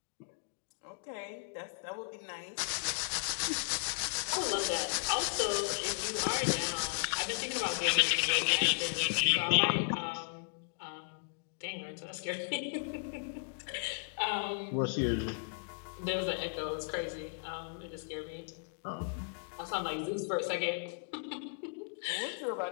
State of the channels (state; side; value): silent; right; digital silence